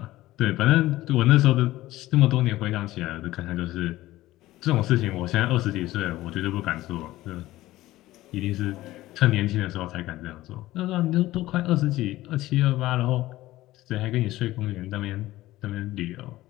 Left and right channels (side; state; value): right; quieter; 16.5 dB